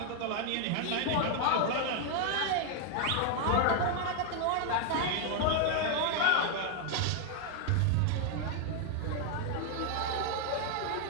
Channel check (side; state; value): both; different; correlation 0.00